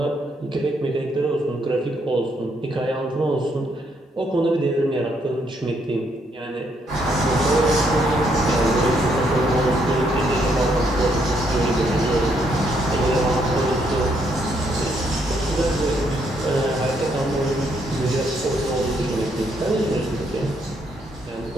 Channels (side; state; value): both; normal; correlation 0.73